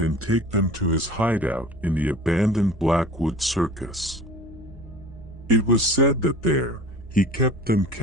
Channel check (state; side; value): normal; both; correlation 0.41